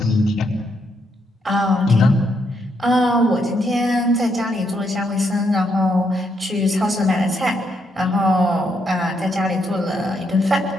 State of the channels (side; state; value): both; normal; correlation 0.77